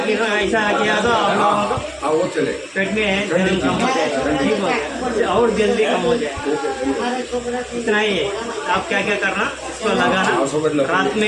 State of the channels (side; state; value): both; identical; correlation 1.00